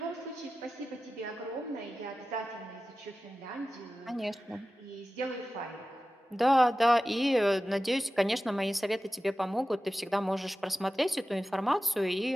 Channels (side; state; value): both; normal; correlation 0.95